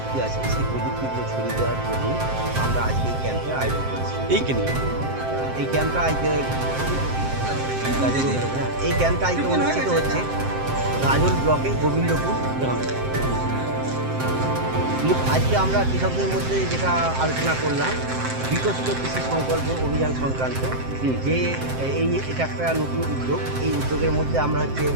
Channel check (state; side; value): late; left; 7.7 ms